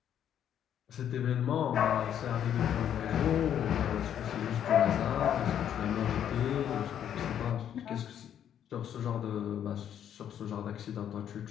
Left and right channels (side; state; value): right; quieter; 9.7 dB